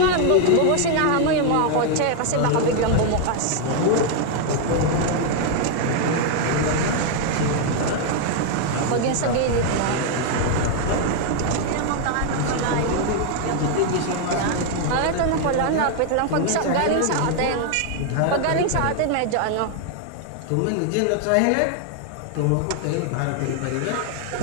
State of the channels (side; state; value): both; different; correlation 0.00